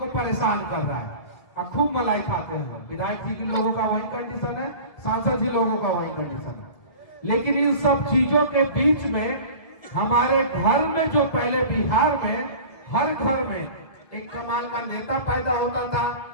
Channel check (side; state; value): right; late; 1.7 ms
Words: परेशान कर रहा है। खूब मलाई खाते हैं। विधायक जी के लोगों का वही कंडीशन है, सांसद जी लोगों का वही कंडीशन है। लेकिन इन सब चीजों के बीच में हमारे घर में जो पहले बिहार में हर घर में एक कमाल का नेता पैदा होता था,